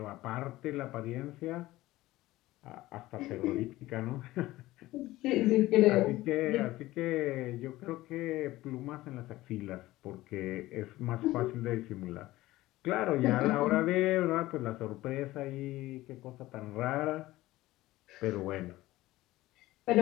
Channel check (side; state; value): right; quieter; 17.3 dB